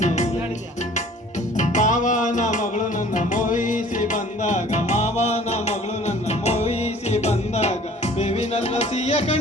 ಮಾವನ ಮಗಳು ನನ್ನ ಮೋಹಿಸಿ ಬಂದಾಗ, ಮಾವನ ಮಗಳು ನನ್ನ ಮೋಹಿಸಿ ಬಂದಾಗ ಬೇವಿನಲ್ಲ ಸಿಹಿಯ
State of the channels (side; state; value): both; normal; correlation 0.50